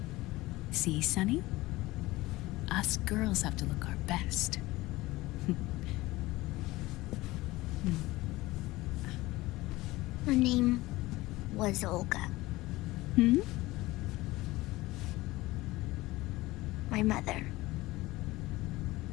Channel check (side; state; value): right; quieter; 19.2 dB